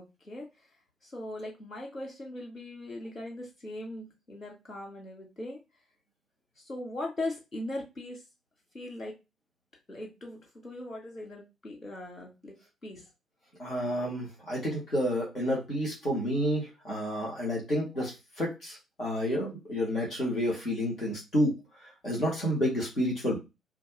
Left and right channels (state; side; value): normal; both; correlation 0.65